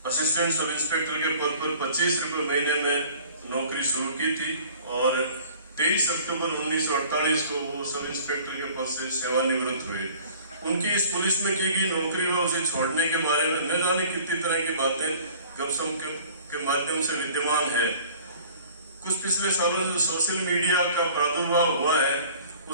असिस्टेंट सब इंस्पेक्टर के पद पर 25 रुपए महीने में नौकरी शुरू की थी और 23 अक्टूबर 1948 को वो सब इंस्पेक्टर के पद से सेवानिवृत्त हुए। उनकी इस पुलिस में की गई नौकरी व उसे छोड़ने के बारे में न जाने कितनी तरह की बातें गपशप के माध्यम से विद्यमान है। कुछ पिछले सालों से सोशल मीडिया का प्रादुर्भाव हुआ है,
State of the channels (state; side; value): inverted; both; correlation -0.49